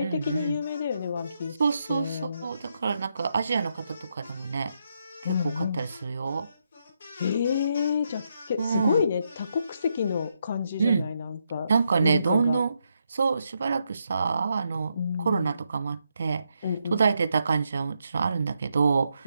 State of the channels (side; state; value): both; inverted; correlation -0.80